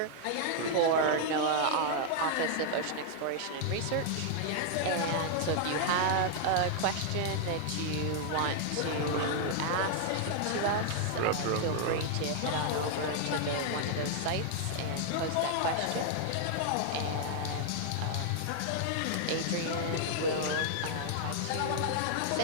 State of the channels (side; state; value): both; different; correlation 0.00